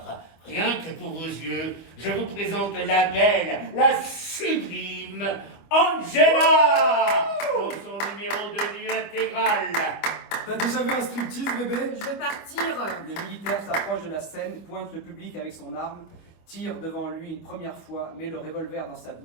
rien que pour vos yeux, je vous présente la belle, la sublime Angela dans son numéro de nu intégral. T'as déjà vu un striptease, bébé? Je vais partir. Le militaire s'approche de la scène, pointe le public avec son arme, tire devant lui une première fois, met le revolver dans sa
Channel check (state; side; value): late; right; 25 ms